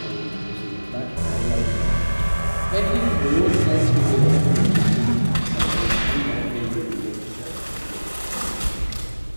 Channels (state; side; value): inverted; both; correlation -1.00